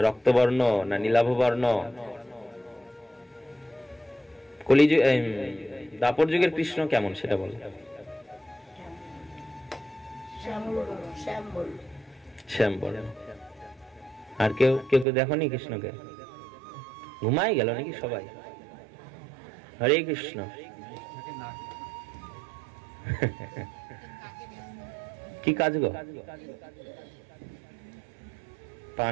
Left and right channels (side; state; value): left; drops out; at 15.1 s